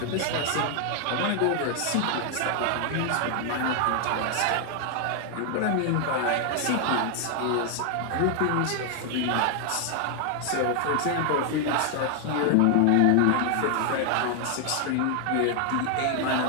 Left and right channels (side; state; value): both; different; correlation 0.00